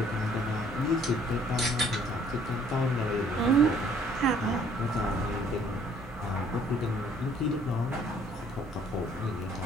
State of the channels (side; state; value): both; normal; correlation 0.60